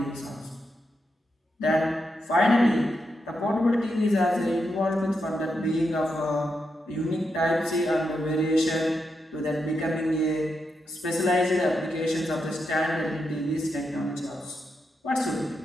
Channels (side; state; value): both; normal; correlation 0.84